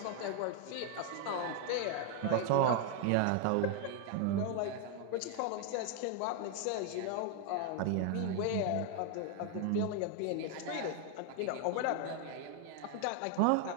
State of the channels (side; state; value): both; different; correlation 0.01